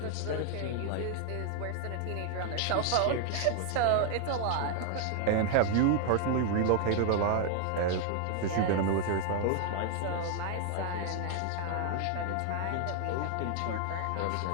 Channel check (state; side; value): different; both; correlation 0.00